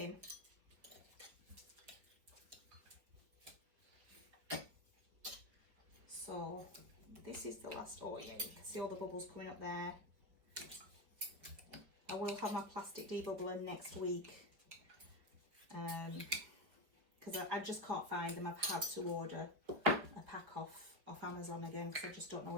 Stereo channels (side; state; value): left; late; 5.3 ms